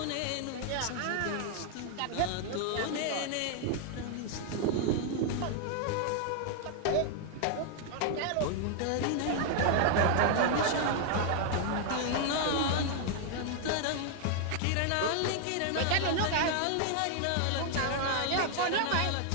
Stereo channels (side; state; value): both; different; correlation 0.00